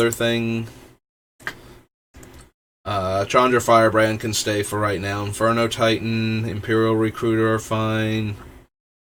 thing. Chandra Firebrand can stay for right now. Inferno Titan, Imperial Recruiter are fine.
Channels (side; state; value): both; identical; correlation 1.00